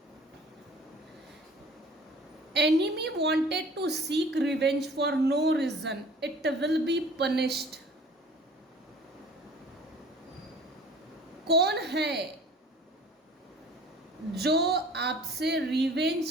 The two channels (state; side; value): normal; both; correlation 0.48